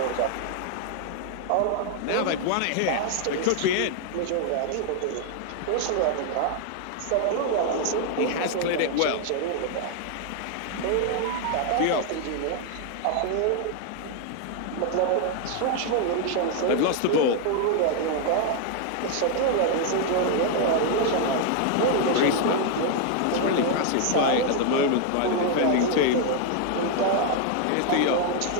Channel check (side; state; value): both; different; correlation 0.00